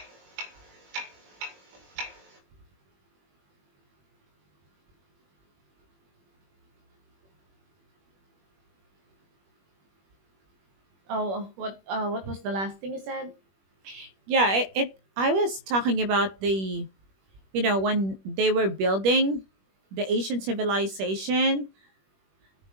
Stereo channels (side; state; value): left; late; 21 ms